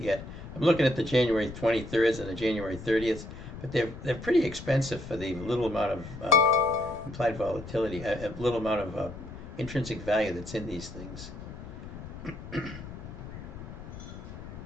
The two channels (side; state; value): left; noise; rumble, 12 dB below the sound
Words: yet. I'm looking at the January 23rd and the January 30th, but they're pretty expensive for the little amount of implied volatility, a little amount of intrinsic value that's in these things. Of